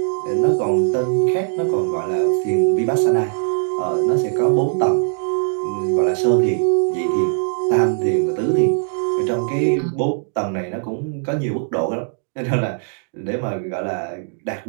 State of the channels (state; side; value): silent; left; digital silence